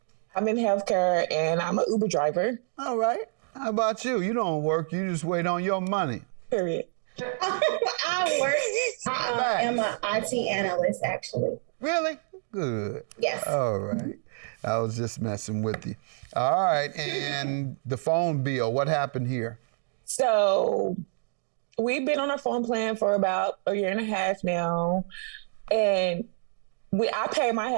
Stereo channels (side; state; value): left; silent; digital silence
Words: I'm in healthcare, and I'm an Uber driver, All right. How about you? You don't work. You just wait on your money. period. I am an IT analyst, actually. Really? Good. Yes. All right. I was just messing with you. All right. And the phone bill, what happened here? So we've been on our phone plan for about a year and a half now. And I pay my